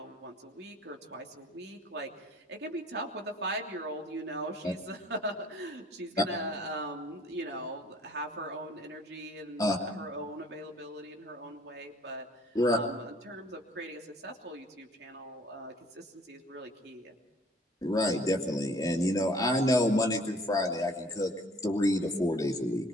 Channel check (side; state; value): both; normal; correlation 0.56